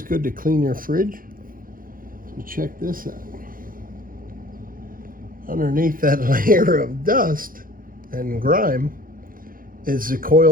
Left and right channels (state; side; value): late; left; 0.41 ms